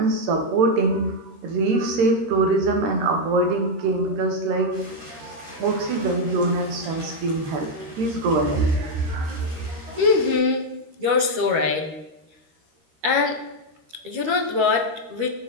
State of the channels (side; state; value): left; late; 13 ms